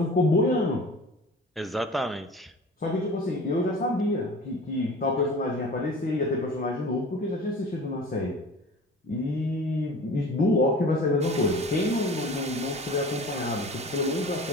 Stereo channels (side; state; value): both; normal; correlation 0.40